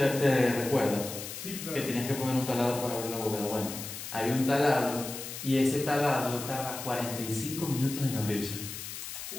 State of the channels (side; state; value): left; noise; hiss, 9 dB below the sound